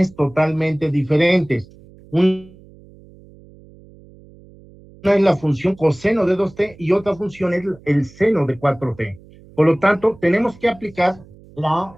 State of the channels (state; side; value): noise; right; hum, 24 dB below the sound